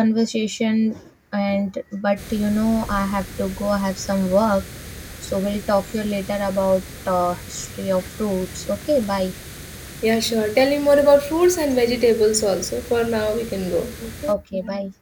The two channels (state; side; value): identical; both; correlation 1.00